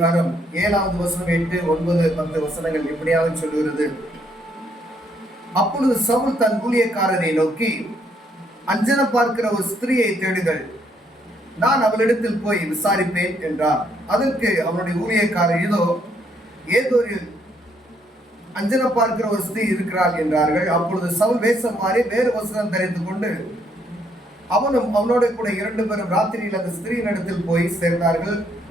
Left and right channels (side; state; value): both; normal; correlation 0.71